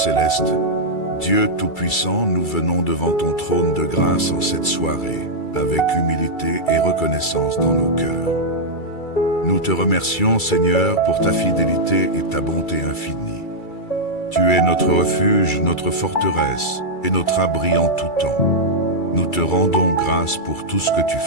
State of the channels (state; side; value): late; right; 2.3 ms